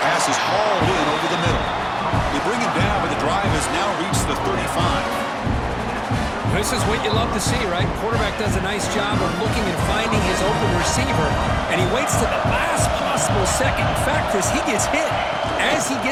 is hauled in over the middle. They bring him down, but the drive has now reached the 35. This is what you love to see, right? Quarterback does a nice job of looking and finding his open receiver, and he waits to the last possible possible second. In fact, Chris, he gets hit as he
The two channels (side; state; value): both; identical; correlation 1.00